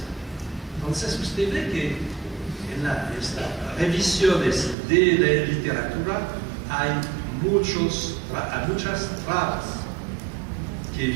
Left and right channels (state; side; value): drops out; left; at 4.8 s